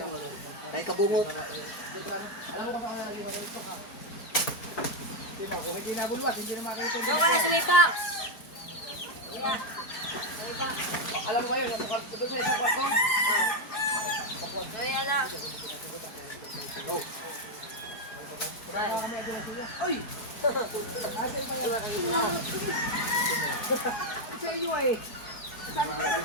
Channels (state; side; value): late; right; 4.6 ms